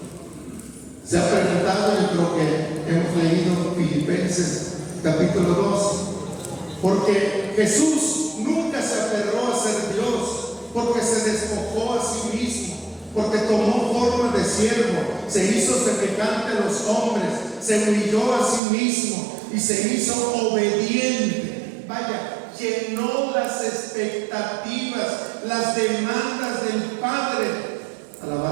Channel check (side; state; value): left; drops out; at 18.6 s